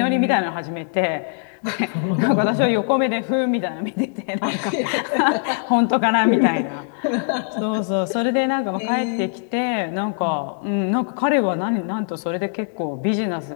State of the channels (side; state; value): right; silent; 65 dB below the other